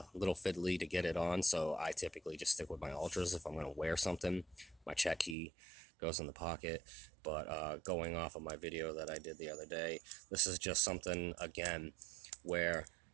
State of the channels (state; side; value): drops out; left; at 5.4 s